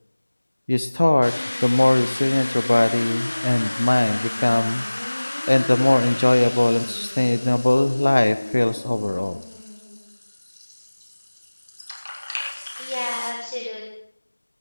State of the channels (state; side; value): inverted; both; correlation -1.00